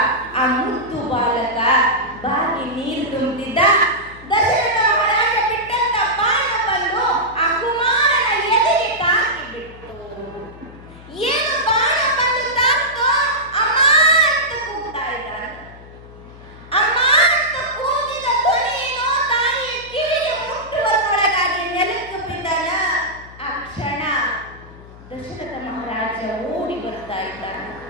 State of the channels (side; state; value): left; noise; hum, 19 dB below the sound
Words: ಆ ಮುದ್ದು ಬಾಲಕ ಬಾಗಿ ನೀರು ತುಂಬಿದ್ದ. ದಶರಥ ಮಹಾರಾಜ ಬಿಟ್ಟಂತ ಬಾಣ ಬಂದು ಆ ಕುಮಾರನ ಎದೆಗೆ ತಾಕಿ ಬಿಟ್ಟು, ಏನು ಬಾಣ ಬಂದು ತಾಕ್ತೋ ಅಮ್ಮ ಅಂತ ಕೂಗ್ತಾ ಇದ್ದಾನೆ. ಅಮ್ಮ ಅಂತ ಕೂಗಿದ ಧ್ವನಿಯೇನೋ ತಾಯಿಯ ಕಿವಿಗೆ ಮುಟ್ಟುವರೊಳಗಾಗಿ ನೆಲಕ್ಕೆ ಬಿದ್ದಾನ. ಆ ಕ್ಷಣ ದಶರಥ ಮಹಾರಾಜ ಓಡಿ ಬರ್ತಾ ಇದ್ದಾನೆ.